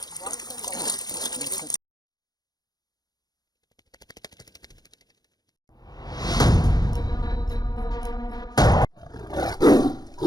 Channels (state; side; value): late; right; 0.19 ms